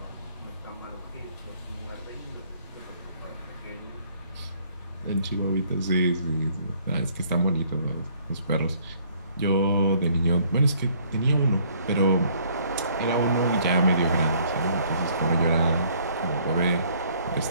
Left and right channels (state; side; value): inverted; both; correlation -0.61